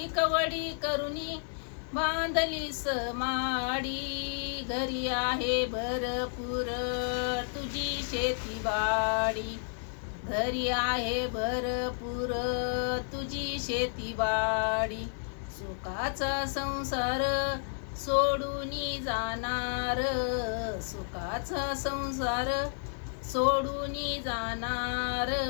कवडी करुणी बांधली समाडी. घरी आहे भरपूर तुझी शेतीवाडी, घरी आहे भरपूर तुझी शेतीवाडी. सुखाचा संसार सोडून जाणार, सुखाचा संसार सोडून जाणार.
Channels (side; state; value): right; silent; 57 dB below the other